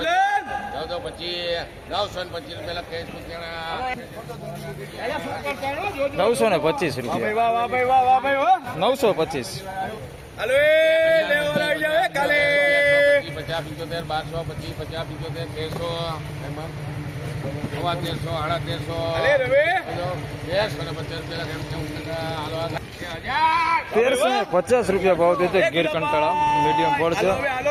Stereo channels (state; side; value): identical; both; correlation 1.00